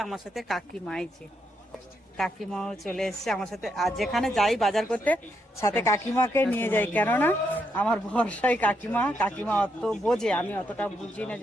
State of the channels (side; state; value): both; normal; correlation 0.79